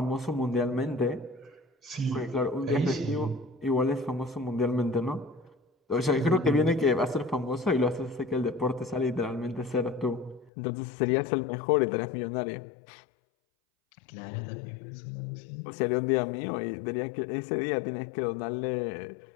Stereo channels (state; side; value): drops out; right; at 10.5 s